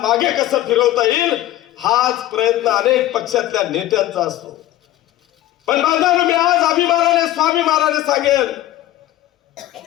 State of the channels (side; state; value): right; quieter; 14.3 dB